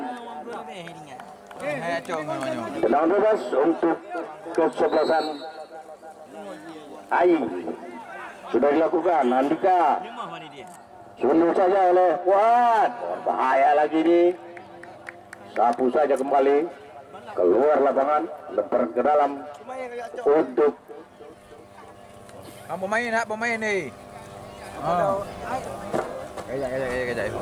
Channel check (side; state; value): both; identical; correlation 1.00